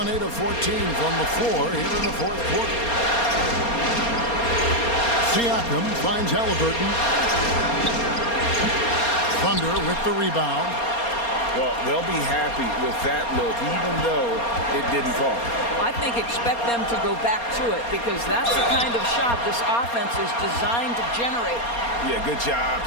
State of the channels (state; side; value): late; right; 4.3 ms